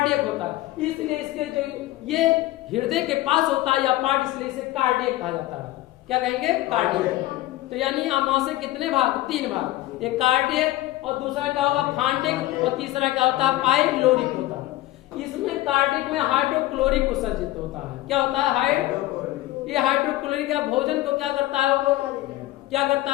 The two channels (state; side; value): quieter; right; 16.6 dB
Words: होता है। इसलिए इसके जो ये हृदय के पास होता है या पार्ट, इसलिए इसे कार्डियक कहा जाता है। क्या कहेंगे? कार्डियक। तो यानी आमाशय कितने भाग? 3 भाग। एक कार्डियक और दूसरा क्या होगा? फांटिक और तीसरा क्या होता है? पाइलोरिक होता है। इसमें कार्डियक में हाइड्रोक्लोरिक उत्सर्जित होता है। क्या होता है? ये हाइड्रोक्लोरिक का भोजन को क्या करता है? वो क्या करता